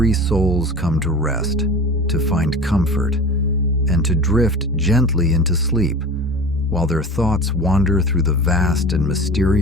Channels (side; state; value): both; normal; correlation 0.35